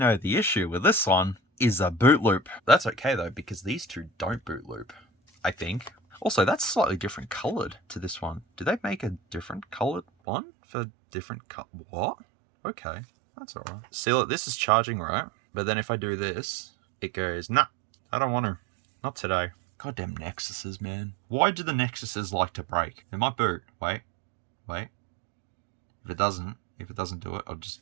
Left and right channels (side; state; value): left; drops out; at 10.1 s